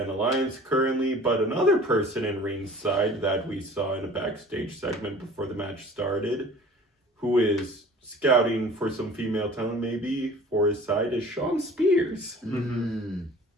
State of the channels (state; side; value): normal; both; correlation 0.46